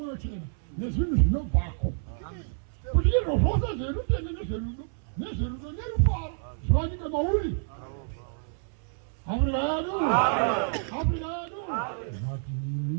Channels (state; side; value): silent; left; 59 dB below the other